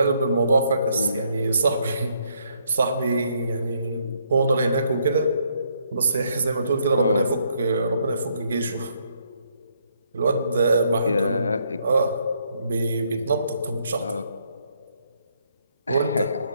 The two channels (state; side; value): inverted; both; correlation -0.72